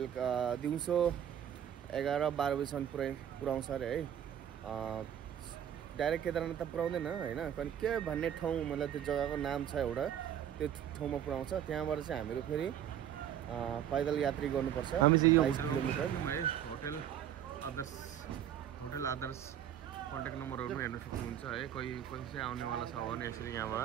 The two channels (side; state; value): left; quieter; 10.0 dB